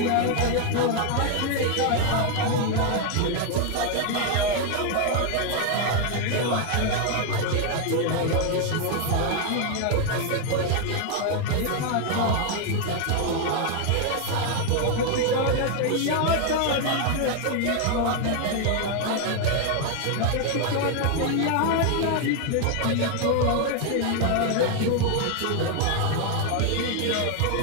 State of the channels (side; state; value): both; different; correlation 0.01